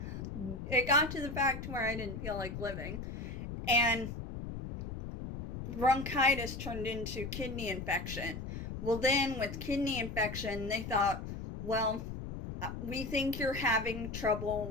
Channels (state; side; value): noise; left; rumble, 7 dB below the sound